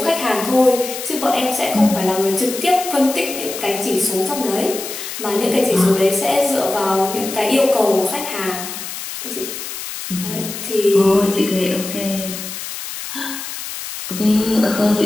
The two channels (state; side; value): noise; left; hiss, 8 dB below the sound